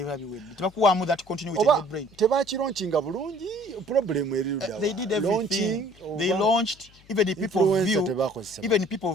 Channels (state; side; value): noise; left; hum, 27 dB below the sound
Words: be with. Tebakuwamu that continue with the brain. Tebakironchinga bulungi problem eri rudawa. They did everything. They launched even the people